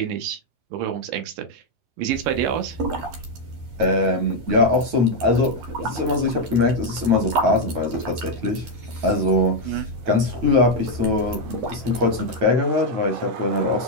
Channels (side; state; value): left; late; 11 ms